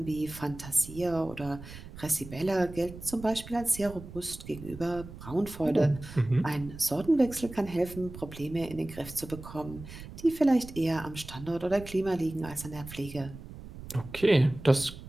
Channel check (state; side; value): noise; right; rumble, 14 dB below the sound